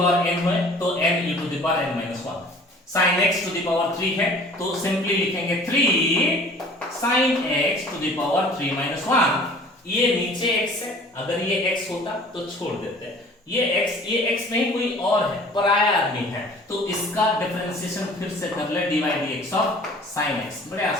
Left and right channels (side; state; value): both; normal; correlation 0.49